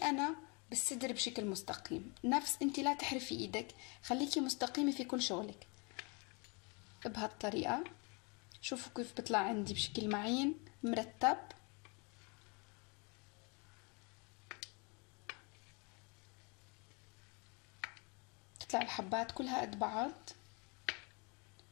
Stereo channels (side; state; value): right; quieter; 31.8 dB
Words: بالصدر بشكل مستقيم. نفس انتي لا تحرفي ايدك، خليكي مستقيمة في كل شغلك بهالطريقة. شوفوا كيف بطلع عندي بشكل معين مرتب. تطلع الحبات كلها قد بعض.